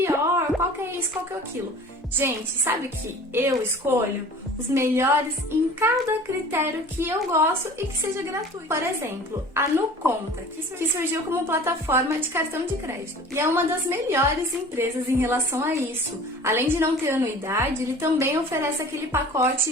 qual que é isso, qual que é aquilo. Gente, sabe que eu escolho os melhores em cada critério que eu gosto e que seja gratuito. Por exemplo, a NuConta, que surgiu como plataforma de cartão de crédito. E é uma das melhores empresas em relação a isso. Além de não ter anuidade, ele também oferece aquele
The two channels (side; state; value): both; normal; correlation 0.43